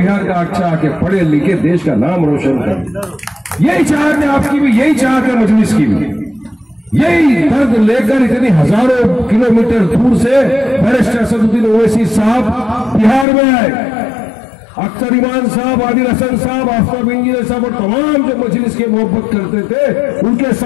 का अच्छा आके पढ़े लिखे देश का नाम रोशन करे। यही चाहत है आपकी भी, यही चाहत है मजलिस की भी। यही दर्द लेकर इतनी हजारों किलोमीटर दूर से बैरिस्टर असदुद्दीन ओवैसी साहब बिहार में आए। अख्तर ईमान साहब, आदिल हसन साहब, आफ्ताब इंजीनियर साहब और तमाम जो मजलिस की मोहब्बत करते थे, उनके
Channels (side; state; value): right; drops out; at 13.2 s